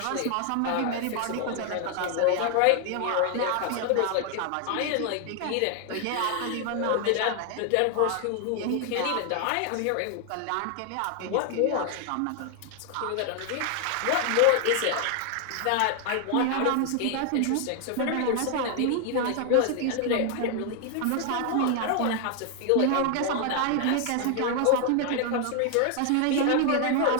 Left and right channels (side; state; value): both; different; correlation 0.00